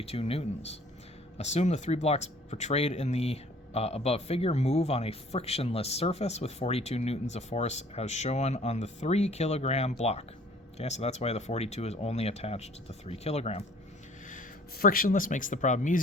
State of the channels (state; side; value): normal; both; correlation 0.54